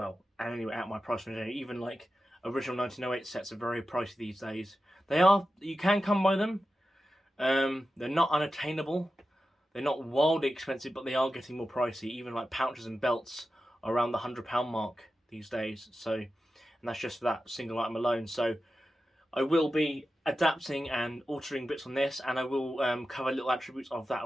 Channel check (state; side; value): normal; both; correlation 0.92